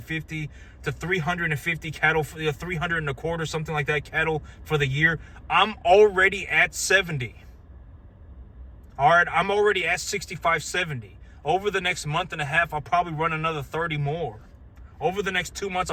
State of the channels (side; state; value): both; identical; correlation 1.00